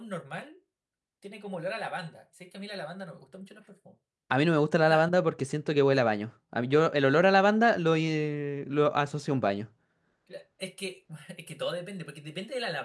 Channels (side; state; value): both; identical; correlation 1.00